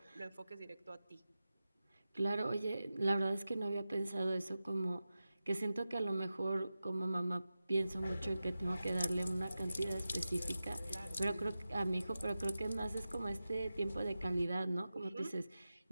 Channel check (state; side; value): inverted; both; correlation -0.94